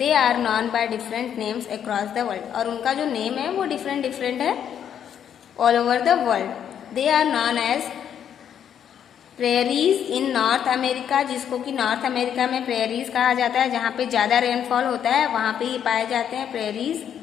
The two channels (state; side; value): quieter; right; 9.0 dB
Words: are known by different names across the world, और उनका जो नेम है वो डिफरेंट डिफरेंट है all over the world. They are known as prairies in North America, जिसको कि नॉर्थ अमेरिका में प्रेरीज कहा जाता है, जहाँ पे ज़्यादा रेनफॉल होता है वहाँ पे ये पाए जाते हैं prairies.